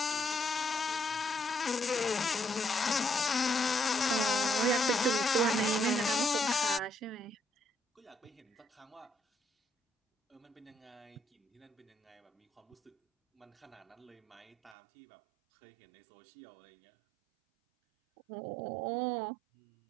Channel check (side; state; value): left; drops out; at 14.8 s